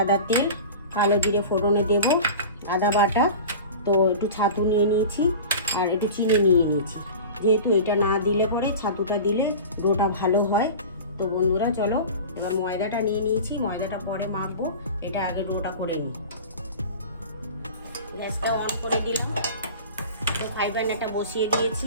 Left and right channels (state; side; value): inverted; both; correlation -0.35